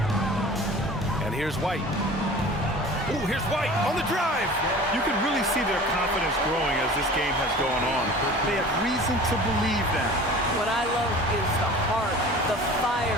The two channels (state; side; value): normal; both; correlation 0.41